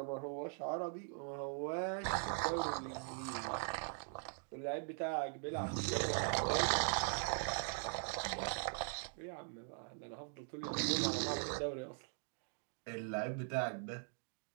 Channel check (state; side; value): silent; left; 50 dB below the other